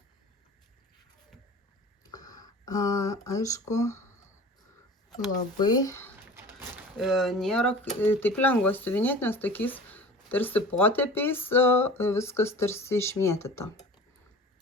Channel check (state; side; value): normal; both; correlation 0.40